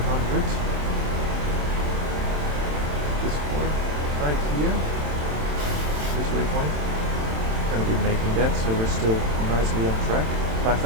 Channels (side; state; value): left; late; 27 ms